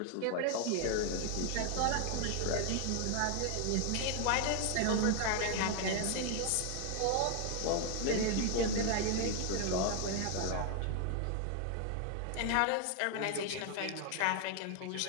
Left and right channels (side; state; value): both; different; correlation 0.00